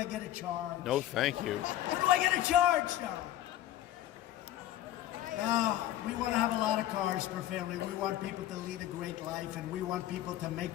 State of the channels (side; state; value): right; quieter; 13.4 dB